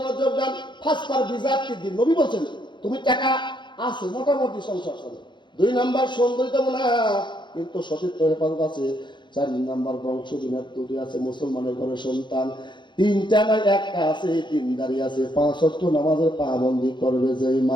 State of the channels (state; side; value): late; right; 0.23 ms